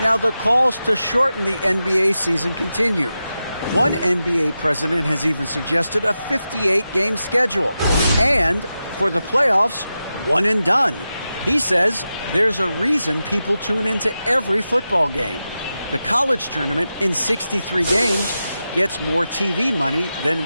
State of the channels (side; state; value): both; inverted; correlation -0.91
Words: the calls to shorten the NBA season continue. One NBA president has even suggested a 58-game schedule. And for the playoffs, one and done. He says there's a reason people tune into every football game. The college tournament in 63 games gets more TV money